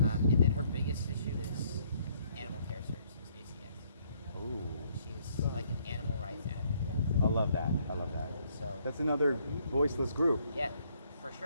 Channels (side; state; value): both; inverted; correlation -0.68